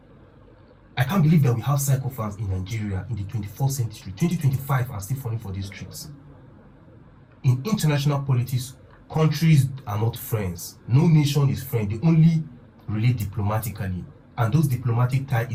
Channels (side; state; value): both; identical; correlation 1.00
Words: I can't believe that we have psychophants in Nigeria in the 21st century, 2025, and still falling for these tricks. In international politics, countries are not friends. No nation is friend. They only relate diplomatically. And those diplomatic ties